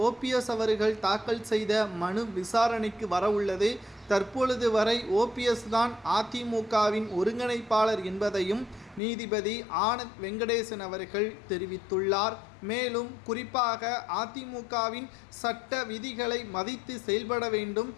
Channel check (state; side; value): drops out; right; at 9.0 s